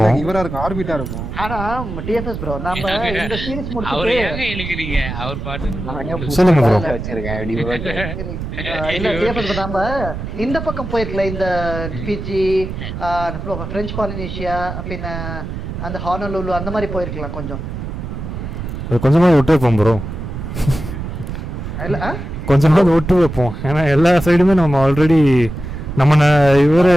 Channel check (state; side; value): noise; right; rumble, 7 dB below the sound